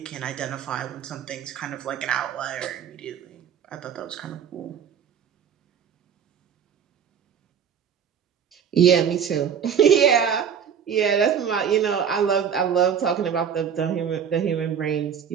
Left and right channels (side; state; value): left; quieter; 7.8 dB